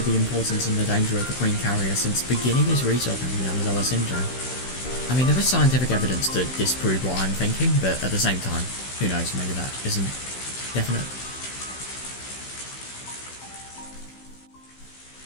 the importance and the danger of the Queen Carrier since beginning his research on the Yamazawa syndrome. I mean, there is scientific evidence to disprove what I'm thinking, but at the same time, who knows, maybe that isn't definite.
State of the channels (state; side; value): late; right; 16 ms